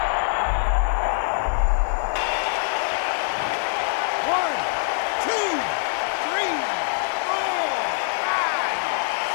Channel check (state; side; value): silent; right; 55 dB below the other